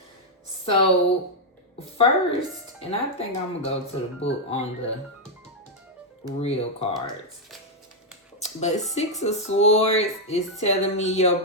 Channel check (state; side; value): normal; both; correlation -0.02